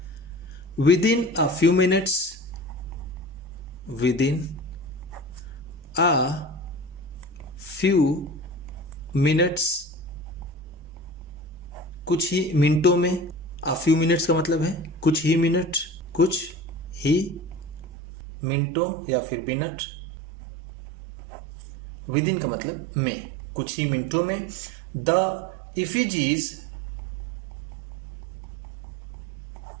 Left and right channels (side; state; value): left; drops out; at 17.9 s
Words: With in a few minutes, with in a few minutes, कुछ ही मिनटों में। अ फ्यू मिनट्स का मतलब है कुछ ही मिनट, कुछ ही मिनटों या फिर मिनट। विद इन का मतलब में, कुछ ही मिनटों में। The effigies